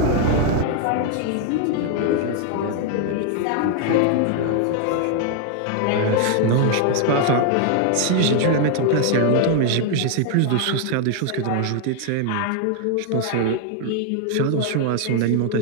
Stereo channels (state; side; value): different; both; correlation 0.00